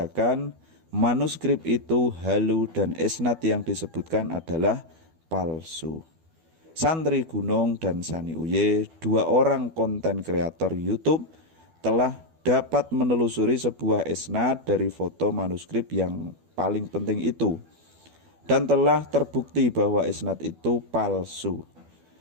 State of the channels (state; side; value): late; left; 12 ms